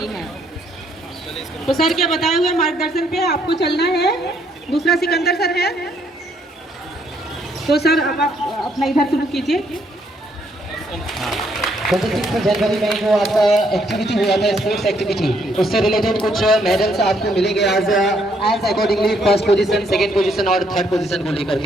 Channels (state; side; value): normal; both; correlation 0.70